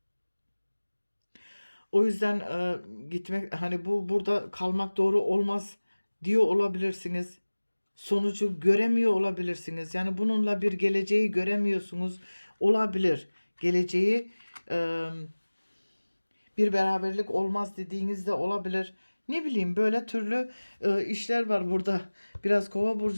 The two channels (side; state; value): both; inverted; correlation -1.00